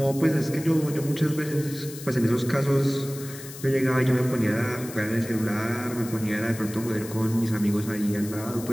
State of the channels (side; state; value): left; noise; hiss, 14 dB below the sound